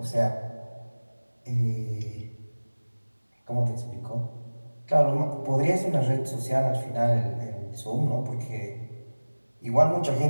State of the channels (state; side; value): inverted; both; correlation -1.00